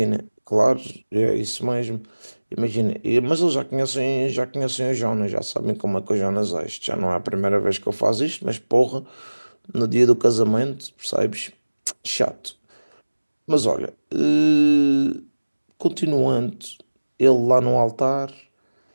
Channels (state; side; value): inverted; both; correlation -1.00